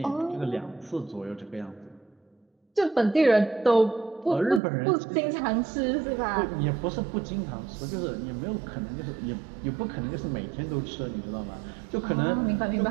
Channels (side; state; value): left; drops out; at 4.6 s